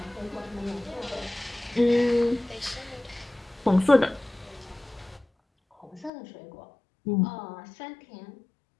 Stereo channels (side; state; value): right; drops out; at 6.1 s